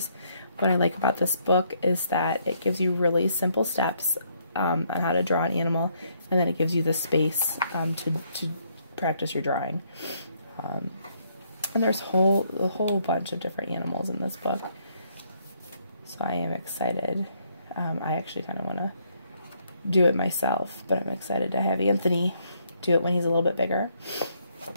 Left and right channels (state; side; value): inverted; both; correlation -0.71